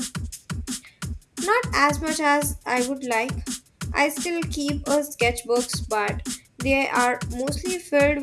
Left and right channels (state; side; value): identical; both; correlation 1.00